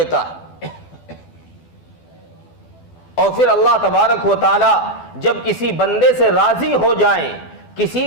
ہے۔ اور پھر اللہ تبارک و تعالی جب کسی بندے سے راضی ہو جائیں،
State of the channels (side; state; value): right; late; 12 ms